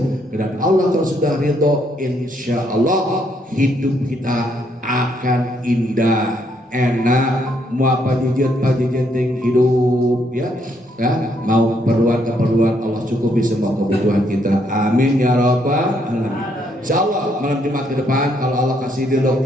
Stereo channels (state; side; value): normal; both; correlation 0.72